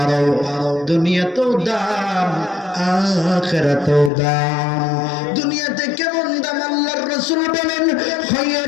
দুনিয়াতেও দাম আখিরাতেও দাম। দুনিয়াতে কেমন দাম আল্লাহর রাসূল বলেন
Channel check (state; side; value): drops out; right; at 4.1 s